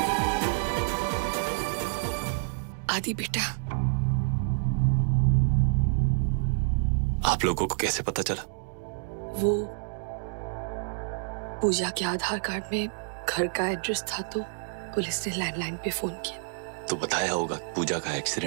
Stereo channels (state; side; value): silent; left; digital silence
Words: आदि बेटा, आप लोगों को कैसे पता चला? वो पूजा के आधार कार्ड में घर का एड्रेस था तो पुलिस ने लैंडलाइन पे फोन किया। तो बताया होगा पूजा का